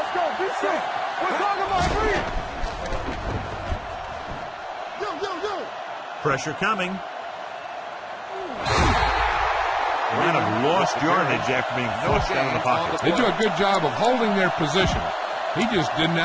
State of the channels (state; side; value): identical; both; correlation 1.00